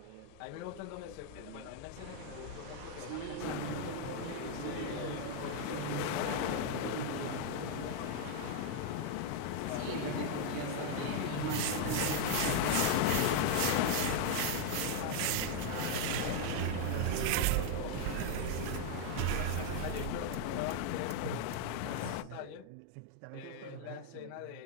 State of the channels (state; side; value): different; both; correlation 0.00